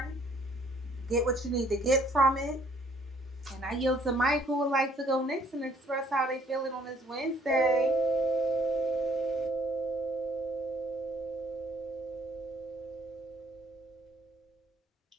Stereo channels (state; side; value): normal; both; correlation 0.63